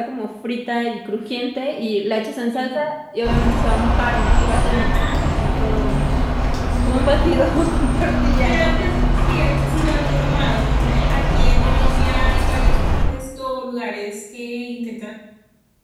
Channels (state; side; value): identical; both; correlation 1.00